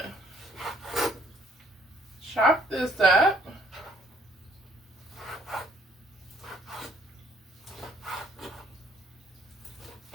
chop this up.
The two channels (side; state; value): both; normal; correlation 0.65